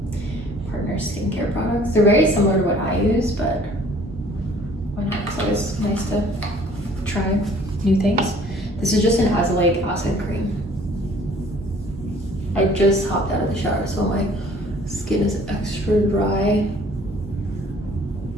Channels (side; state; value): both; normal; correlation 0.55